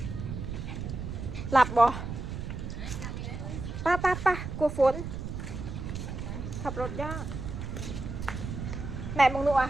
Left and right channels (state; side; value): noise; right; rumble, 6 dB below the sound